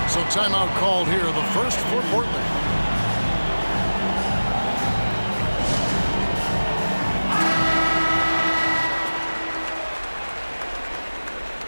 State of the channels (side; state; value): both; inverted; correlation -1.00